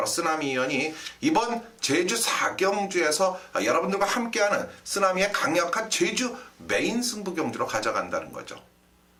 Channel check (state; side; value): identical; both; correlation 1.00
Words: 쓰나미 위원이 이번 제주 4경주에서 여러분들과 함께하는 쓰나미의 강력한 제주 메인 승부 경주로 가져간다는 거죠.